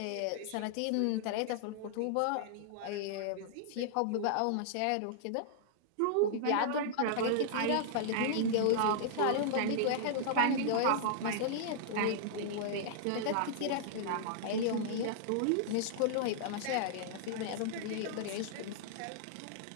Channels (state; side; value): different; both; correlation -0.01